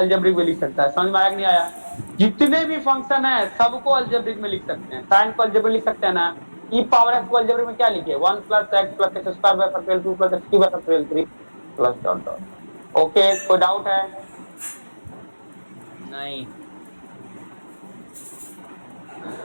में लिख सकता है। समझ में आया कि नहीं आया? जितने भी फंक्शन है सबको अलजेब्रिक में लिख सकते हैं। साइन को अलजेब्रिक लिख सकते हैं ना, ई पावर एक्स को अलजेब्रिक में क्या लिखे, 1 plus x plus x square by factorial 2 plus x cube by factorial 3 plus dot dot. Okay, कोई डाउट है? नहीं।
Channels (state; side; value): inverted; both; correlation -1.00